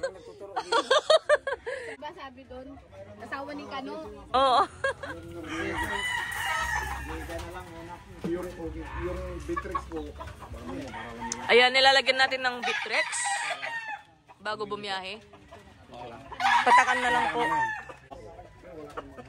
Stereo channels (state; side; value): identical; both; correlation 1.00